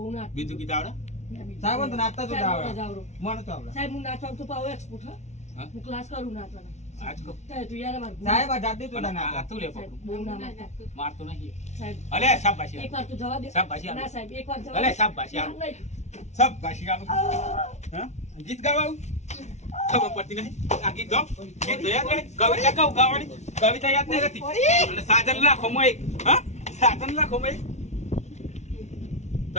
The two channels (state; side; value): late; right; 0.32 ms